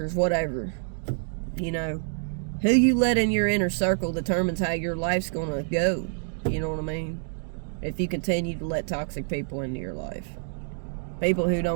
whatever. You know, who you let in your inner circle determines how your life's gonna go. You know what I mean? If you continue to let toxic people into your life, people who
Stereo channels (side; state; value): left; silent; digital silence